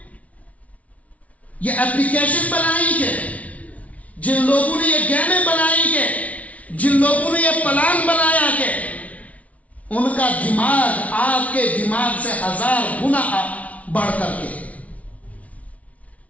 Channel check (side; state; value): right; late; 0.067 ms